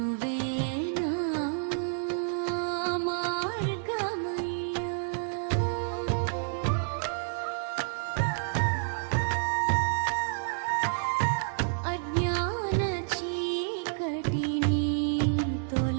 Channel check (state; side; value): silent; left; digital silence